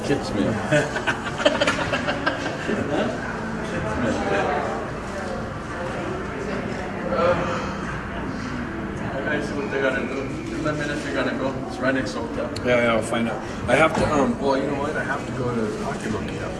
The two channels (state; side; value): identical; both; correlation 1.00